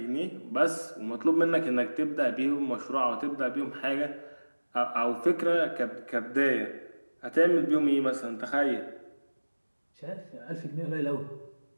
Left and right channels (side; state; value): both; inverted; correlation -1.00